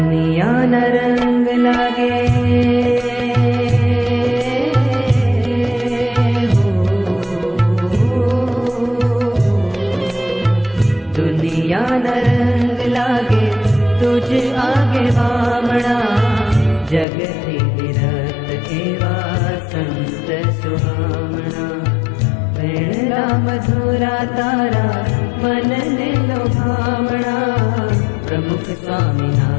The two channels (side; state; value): right; drops out; at 17.1 s